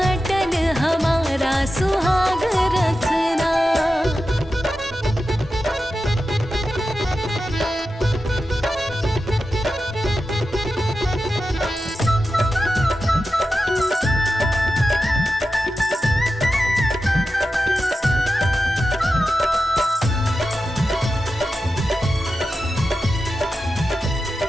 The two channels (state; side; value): normal; both; correlation 0.92